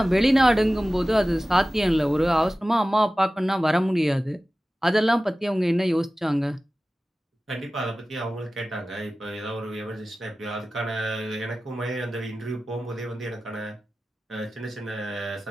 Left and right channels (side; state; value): both; normal; correlation 0.96